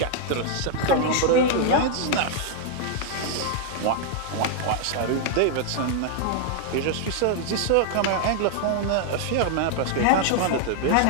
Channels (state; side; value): different; both; correlation 0.00